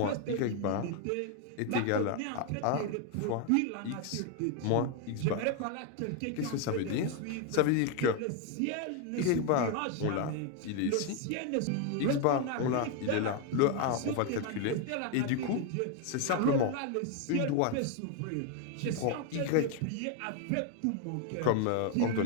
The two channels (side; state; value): both; different; correlation 0.01